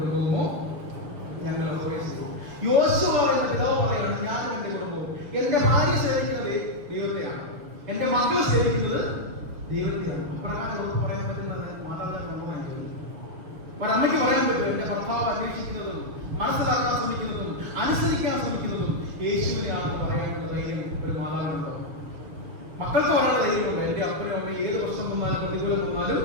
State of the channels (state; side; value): late; left; 6.5 ms